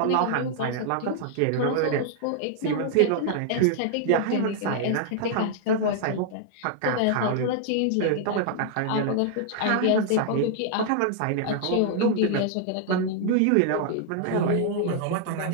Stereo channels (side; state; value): both; different; correlation 0.00